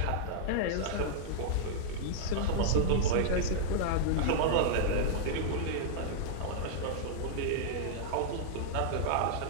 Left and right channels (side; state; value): both; different; correlation -0.02